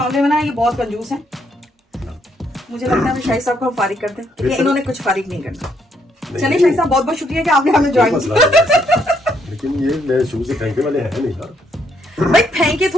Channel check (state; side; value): normal; both; correlation 0.72